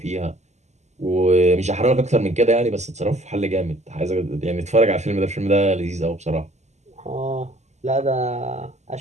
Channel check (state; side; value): late; left; 0.33 ms